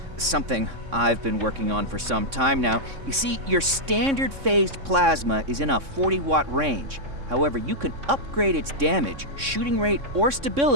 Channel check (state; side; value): late; left; 3.6 ms